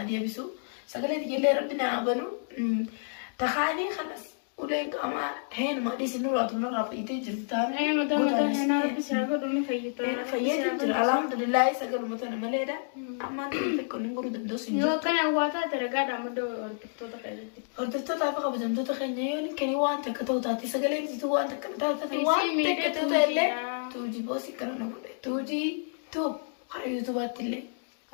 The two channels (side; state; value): right; silent; digital silence